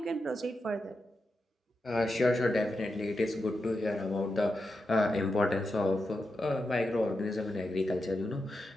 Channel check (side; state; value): both; normal; correlation 0.88